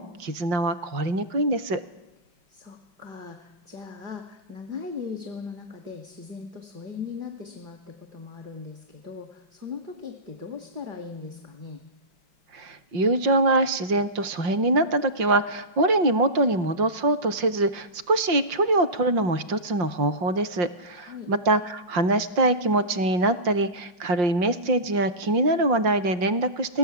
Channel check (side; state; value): left; late; 5.6 ms